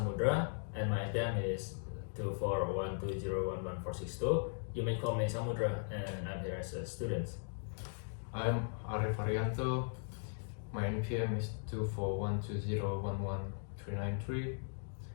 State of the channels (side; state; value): right; silent; digital silence